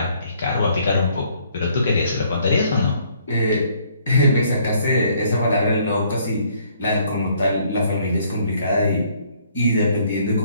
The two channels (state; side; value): inverted; both; correlation -0.64